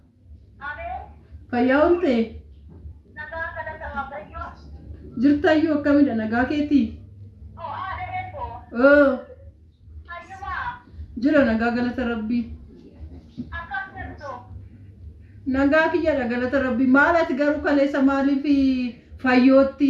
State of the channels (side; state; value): both; identical; correlation 1.00